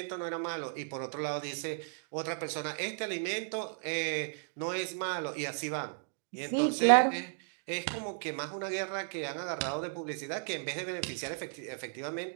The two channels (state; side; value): silent; left; digital silence